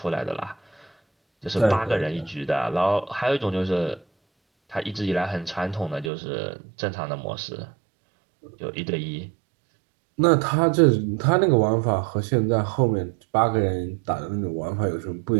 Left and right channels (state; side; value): drops out; left; at 6.1 s